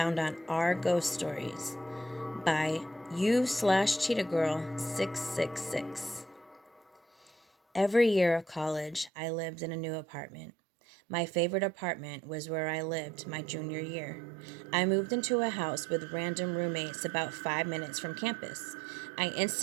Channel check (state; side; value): drops out; left; at 9.1 s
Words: on our ghost stories by you slash cheetah girl 666. Every year of college, I lived in a new apartment. My favorite apartment was where I lived my junior year. I moved into a house with random roommates about 5 minutes from campus. I